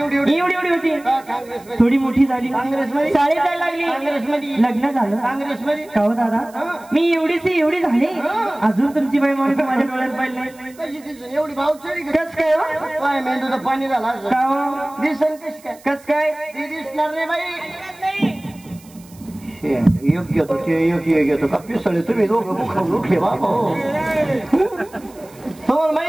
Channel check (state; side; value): noise; right; hiss, 25 dB below the sound